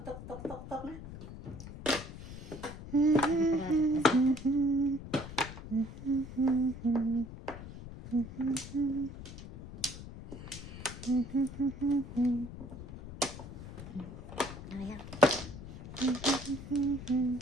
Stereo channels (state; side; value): noise; left; rumble, 12 dB below the sound